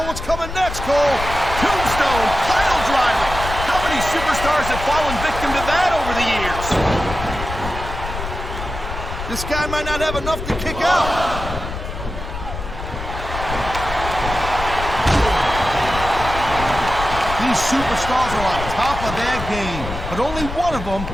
what's coming next, Cole. Tombstone, pile driver. How many superstars have fallen victim to that over the years? This guy might not have enough to kick out. These superstars are on top of their game, but only one of them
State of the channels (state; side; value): noise; left; rumble, 7 dB below the sound